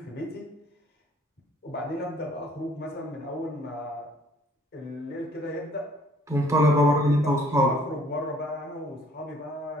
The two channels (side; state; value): both; normal; correlation 0.59